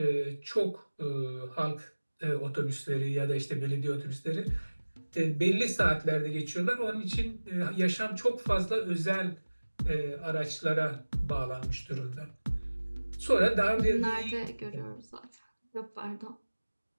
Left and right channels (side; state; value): both; inverted; correlation -1.00